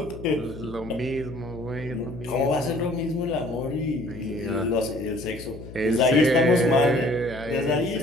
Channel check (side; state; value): left; noise; hum, 14 dB below the sound